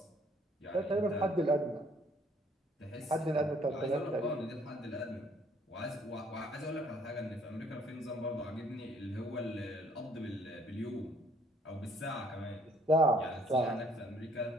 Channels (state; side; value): normal; both; correlation 0.62